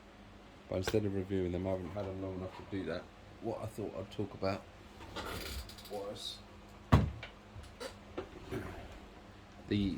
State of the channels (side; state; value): both; identical; correlation 1.00